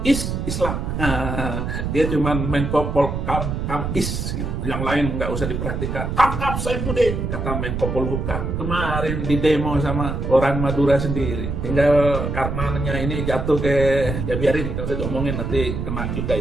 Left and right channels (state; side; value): noise; right; rumble, 3 dB below the sound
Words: Islam. Dia cuma Menko Polhukam gitu. Yang lain nggak usah diperhatikan. Tangkap Saifuddin, kata Menko Polhukam. Kemarin di demo sama orang Madura sendiri. Tinggal karenanya ini jatuh ke, ya biarin, kalau saya ngomongin nanti kena juga